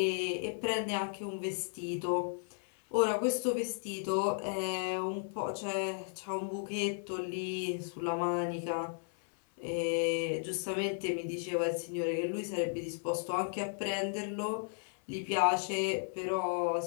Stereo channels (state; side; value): silent; right; 55 dB below the other